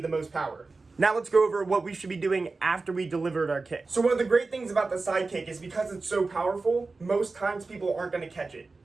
the most power. Now let's go over what we should be doing after we delivered our kick. So one of the great things about the side kick is because it's so powerful, most times people aren't going to catch it.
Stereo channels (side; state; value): left; quieter; 3.8 dB